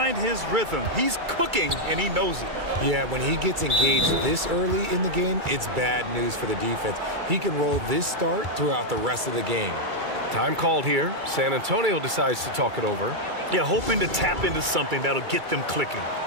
his rhythm. He's cooking, and he knows it. Yeah, when he gets engaged this early in the game, it's bad news for the defense. He can roll this start throughout the rest of the game. Time called here. San Antonio decides to talk it over. Yeah, hoping to tap into something that'll get them clicking.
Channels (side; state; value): left; late; 2.3 ms